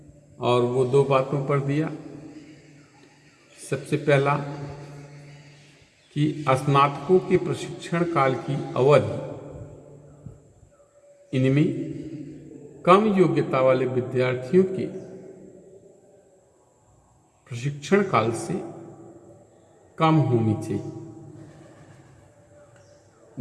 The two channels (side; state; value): both; identical; correlation 1.00